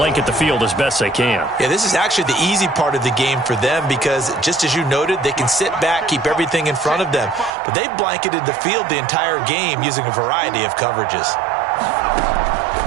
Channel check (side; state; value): left; drops out; at 7.5 s